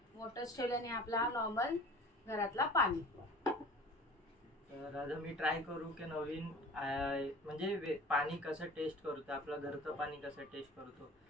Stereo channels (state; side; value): normal; both; correlation 0.42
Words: वॉटर्स ठेवले आणि आपला नॉर्मल घरातला पाणी। तर आज मी ट्राय करू की नवीन म्हणजे पाणी कसं टेस्ट करतो, आपलं घरचं पाणी कसं टेस्ट करतो